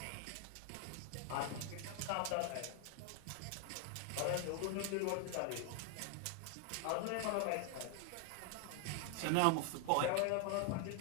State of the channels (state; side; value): different; both; correlation 0.00